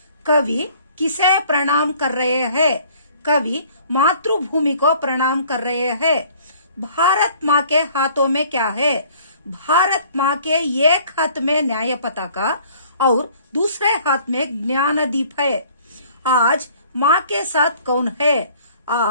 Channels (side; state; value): both; inverted; correlation -0.54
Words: कवि किसे प्रणाम कर रहे हैं? कवि मातृभूमि को प्रणाम कर रहे हैं. भारत माँ के हाथों में क्या है? भारत माँ के एक हाथ में न्याय पताका और दूसरे हाथ में ज्ञानदीप है. आज माँ के साथ कौन है?